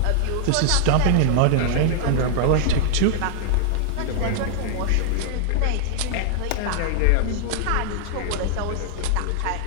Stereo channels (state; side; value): different; both; correlation -0.01